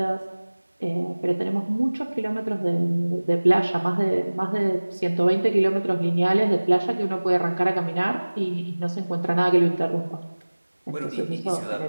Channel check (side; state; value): both; inverted; correlation -1.00